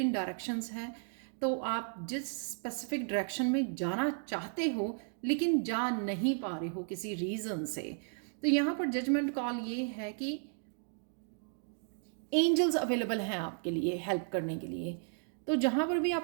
डायरेक्शंस हैं तो आप जिस स्पेसिफिक डायरेक्शन में जाना चाहते हो लेकिन जा नहीं पा रहे हो किसी रीज़न से। तो यहाँ पर जजमेंट कॉल ये है कि एंजल्स अवेलेबल हैं आपके लिए हेल्प करने के लिए। तो जहाँ पर भी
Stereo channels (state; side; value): silent; left; 55 dB below the other